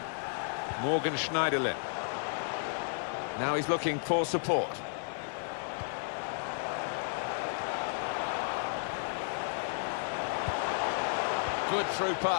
Morgan Schneiderlin. Now he's looking for support. Good through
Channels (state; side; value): silent; right; 56 dB below the other